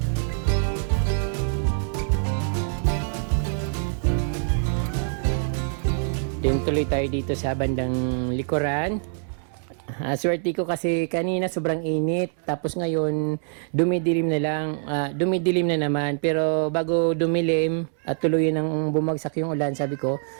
tuloy tayo dito sa bandang likuran. Swerte ko kasi kanina sobrang init, tapos ngayon dumidilim na lang, dumidilim na naman. Pero bago dumilim at tuluyan ng bumagsak yung ulan, sabi ko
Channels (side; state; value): left; silent; digital silence